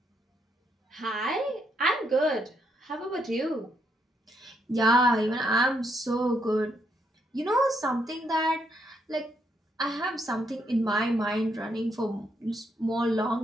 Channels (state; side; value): normal; both; correlation 0.76